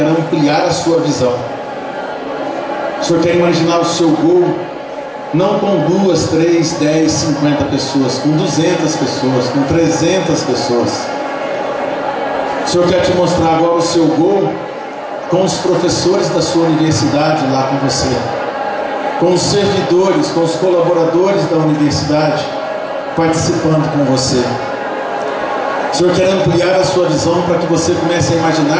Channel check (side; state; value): both; identical; correlation 1.00